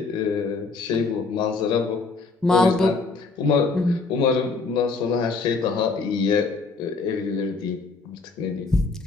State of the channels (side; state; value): right; quieter; 4.2 dB